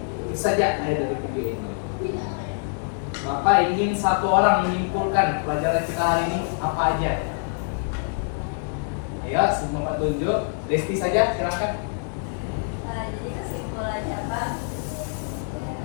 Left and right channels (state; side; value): silent; right; 62 dB below the other